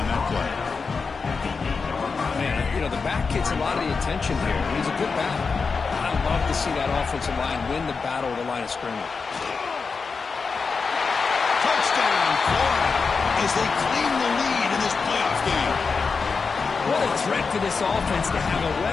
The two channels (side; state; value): right; quieter; 4.9 dB